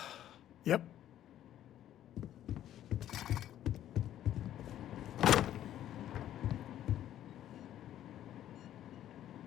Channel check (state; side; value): quieter; right; 11.8 dB